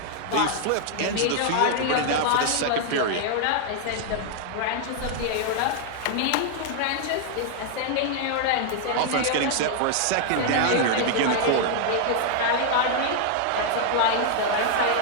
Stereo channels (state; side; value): different; both; correlation 0.00